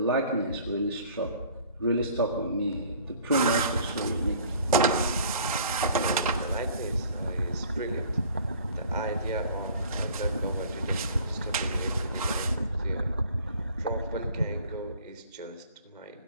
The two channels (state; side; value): inverted; both; correlation -0.51